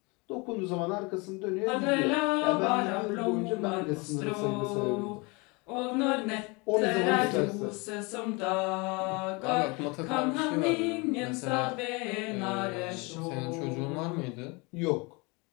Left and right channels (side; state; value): right; quieter; 28.1 dB